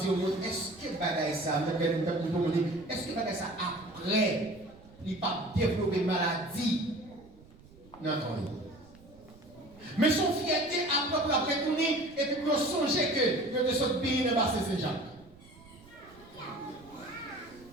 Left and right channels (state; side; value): noise; right; rumble, 24 dB below the sound